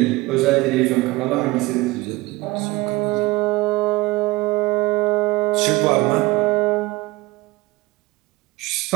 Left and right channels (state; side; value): quieter; left; 21.1 dB